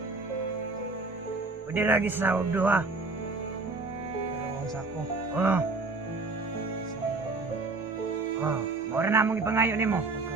Pwede lagi sa og duha. Dalawang sako. Oh, mora na mong ipangayo nimo.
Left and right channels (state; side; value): quieter; left; 3.6 dB